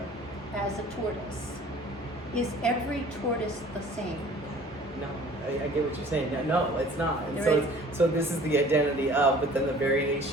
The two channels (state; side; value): normal; both; correlation 0.49